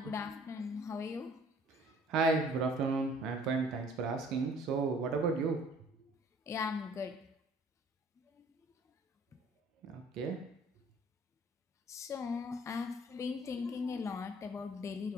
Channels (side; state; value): both; normal; correlation 0.55